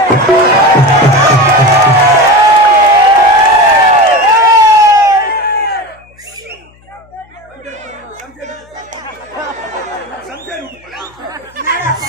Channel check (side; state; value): left; noise; hum, 30 dB below the sound